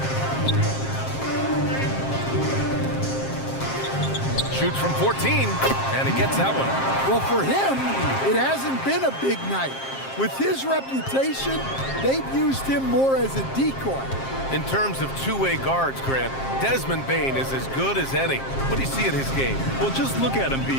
Shoots from 14, and he gets that one. Well, for him, it hasn't been a big night. With his reputation, they've used him more as a decoy. In terms of two-way guards, Grant, Desmond Bane is as good as any. What do you see in his game? Well, just look at him,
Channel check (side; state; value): right; late; 7.5 ms